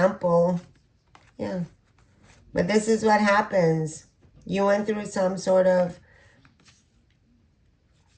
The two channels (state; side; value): identical; both; correlation 1.00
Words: Yeah. But this is what happens. You went through some sort of,